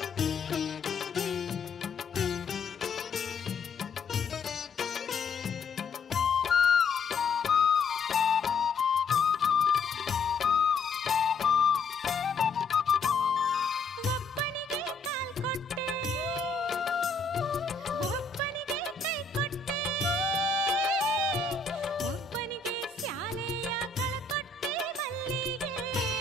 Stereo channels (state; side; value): quieter; right; 4.4 dB